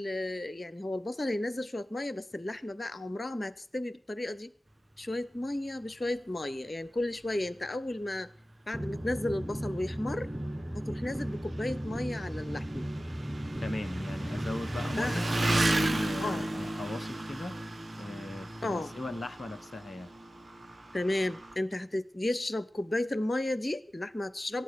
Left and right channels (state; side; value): normal; both; correlation 0.95